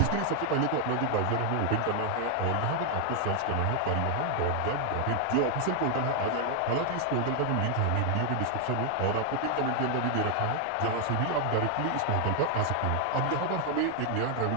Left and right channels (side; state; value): both; different; correlation 0.00